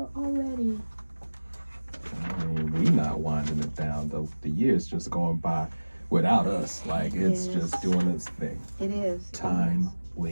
already. I mean, we not winding it down, though. The year's just going by without us. Like, it's just doing its thing. It is. Time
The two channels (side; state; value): both; inverted; correlation -1.00